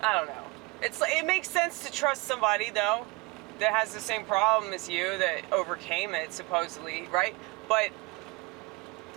I don't know. It makes sense to trust somebody, though, that has the same problem as you, that overcame it, supposedly, right? But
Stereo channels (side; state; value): left; quieter; 25.3 dB